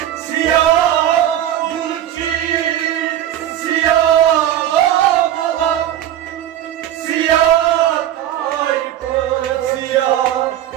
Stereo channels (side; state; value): left; quieter; 11.7 dB